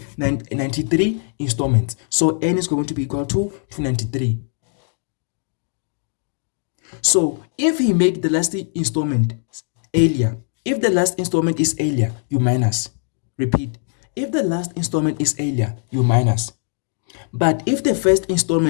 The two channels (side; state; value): right; silent; 56 dB below the other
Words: 93 installments. So n is going to be equal to 293. So if he make the last installment earlier, if the last installment is earlier, you minus. Repeat. If the last installment is earlier, you minus. But if the first